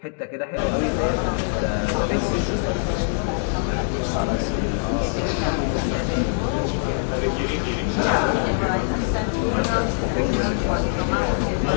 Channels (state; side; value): silent; right; 63 dB below the other